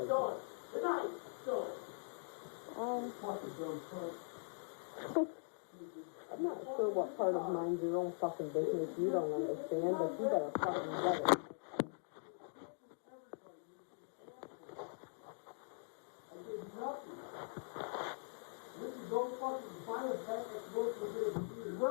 Good night. Go. I'm not sure what part of mind your own fucking business you don't understand, but you better fucking get it. I did nothing. This is no fucking final fact that's supposed to be a computer.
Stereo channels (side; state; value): right; silent; digital silence